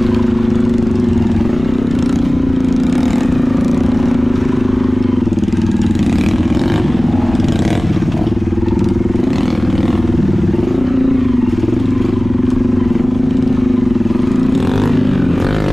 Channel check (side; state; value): left; noise; rumble, 13 dB below the sound